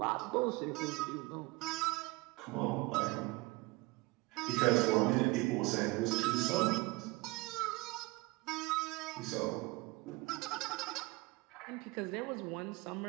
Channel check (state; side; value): quieter; left; 23.7 dB